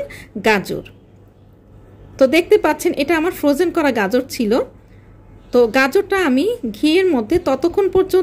গাজর। তো দেখতে পাচ্ছেন এটা আমার ফ্রোজেন করা গাজর ছিল। তো গাজরটা আমি ঘিয়ের মধ্যে ততক্ষণ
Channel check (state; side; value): identical; both; correlation 1.00